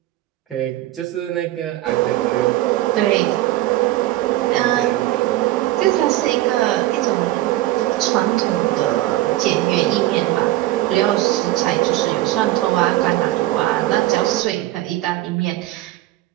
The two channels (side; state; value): left; quieter; 16.0 dB